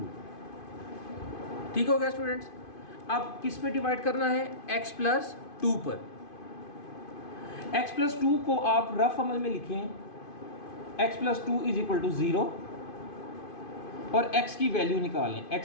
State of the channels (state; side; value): late; right; 2.5 ms